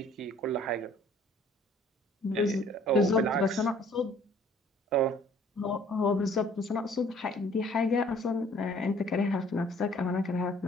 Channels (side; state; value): both; normal; correlation 0.56